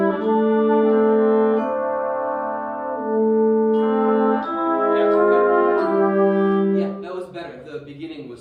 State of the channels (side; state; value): both; identical; correlation 1.00